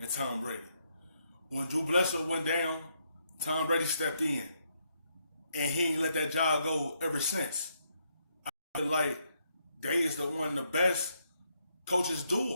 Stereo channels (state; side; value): inverted; both; correlation -0.76